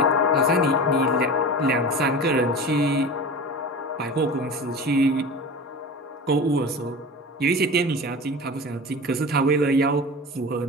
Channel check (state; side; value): normal; both; correlation 0.32